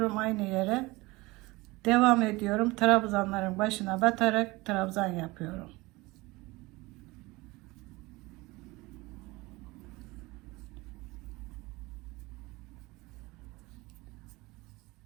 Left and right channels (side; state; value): left; quieter; 22.2 dB